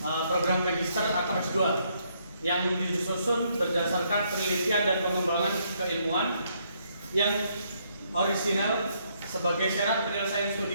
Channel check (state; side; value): inverted; both; correlation -0.72